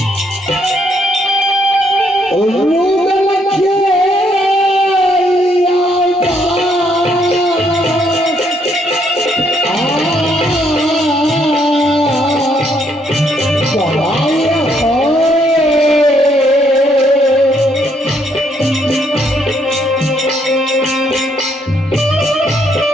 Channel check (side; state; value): both; normal; correlation 0.71